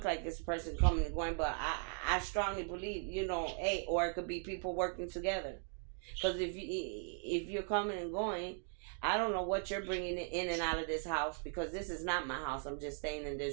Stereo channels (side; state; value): left; silent; 52 dB below the other